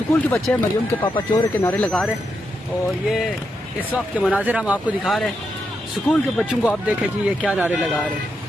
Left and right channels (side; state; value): both; normal; correlation 0.83